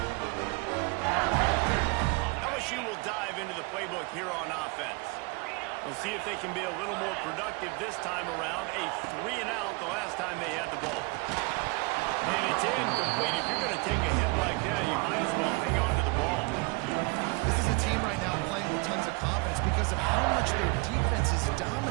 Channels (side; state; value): left; quieter; 28.9 dB